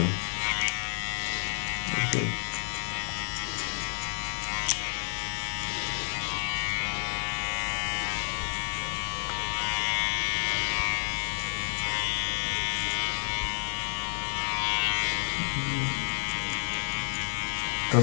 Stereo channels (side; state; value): right; silent; 58 dB below the other